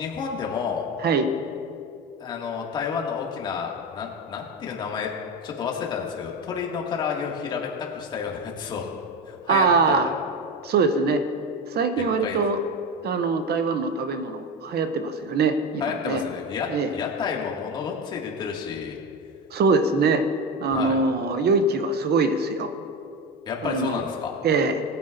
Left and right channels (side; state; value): both; normal; correlation 0.19